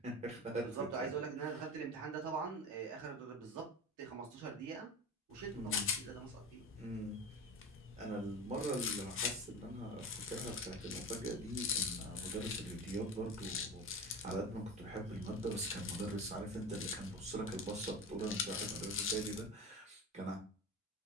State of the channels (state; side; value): normal; both; correlation 0.29